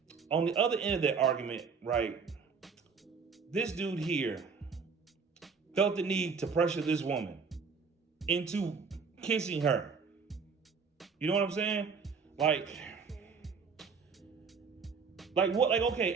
on the other end of that argument, right, this dude here felt the need to pressure this woman into kissing her. You know what I'm saying? Like what, like, okay,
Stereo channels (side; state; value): left; quieter; 5.4 dB